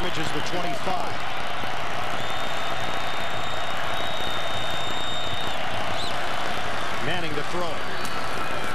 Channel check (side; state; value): right; noise; rumble, 8 dB below the sound